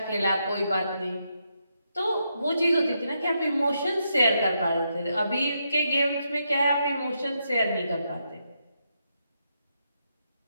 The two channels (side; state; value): both; inverted; correlation -0.81